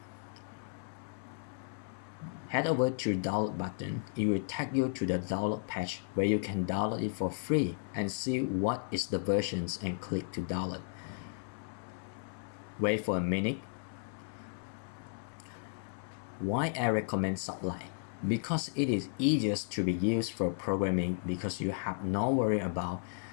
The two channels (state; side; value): silent; right; 55 dB below the other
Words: Head over to the download button. It will take you to the download page where you can download it for free and see what is the versions and click to download. Wait for a minute. Why I recommend Sublime? Because it is easiest to be used for programming, because you have no worry about